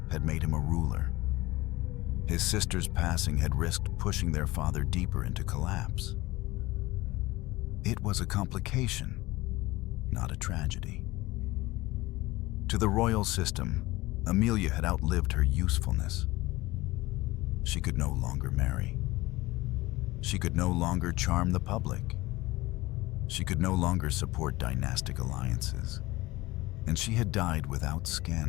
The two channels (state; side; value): quieter; right; 19.7 dB